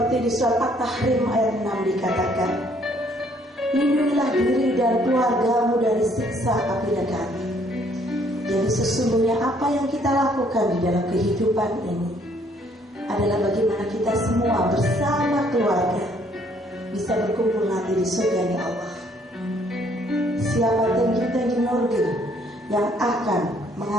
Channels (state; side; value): normal; both; correlation 0.64